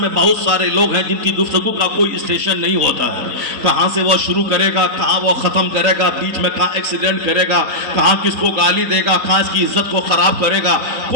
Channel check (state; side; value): late; left; 3.8 ms